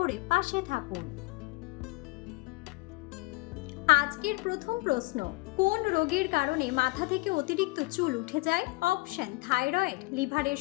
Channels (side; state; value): right; quieter; 23.1 dB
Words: পাশে থাকুন। আজকের প্রথম প্রশ্ন, কোন রোগের কারণে মাথা থেকে অতিরিক্ত চুল উঠে যায়? অপশন: থাইরয়েড, লিভারের